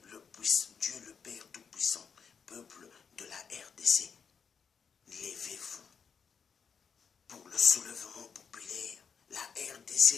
Dieu le Père Tout-Puissant, peuple de la RDC, levez-vous pour le soulèvement populaire. La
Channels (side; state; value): right; quieter; 6.4 dB